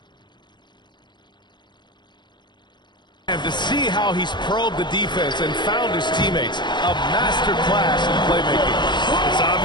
And to see how he's probed the defense and found his teammates, a master class in playmaking. It's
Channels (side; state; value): right; late; 0.22 ms